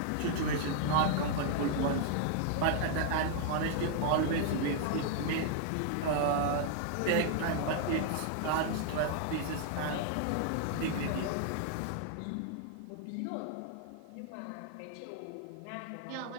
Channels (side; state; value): both; different; correlation 0.00